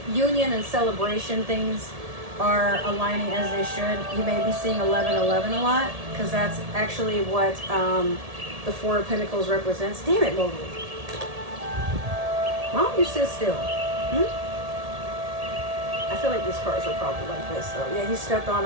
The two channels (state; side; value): late; left; 1.7 ms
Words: union and celebration things are aligning as they should. You may be seeing 1111 a lot because that's actually what the Four of Pentacles represents. Damn it, Mowgli. Why don't you sit still? I feel like these cards were probably like this, though. Yeah, he stepped on